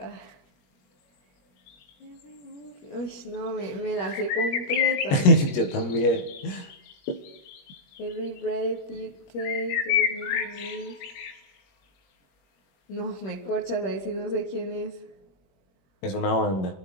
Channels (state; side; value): late; right; 21 ms